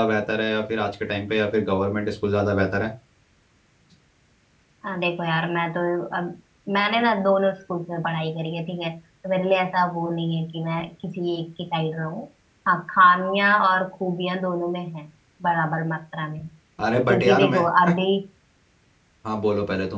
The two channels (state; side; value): identical; both; correlation 1.00